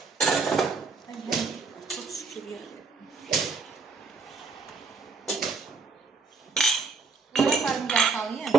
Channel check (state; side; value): quieter; left; 4.2 dB